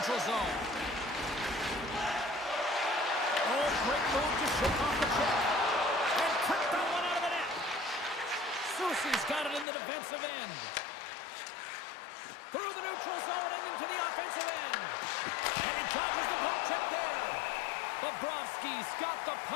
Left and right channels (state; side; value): drops out; right; at 9.7 s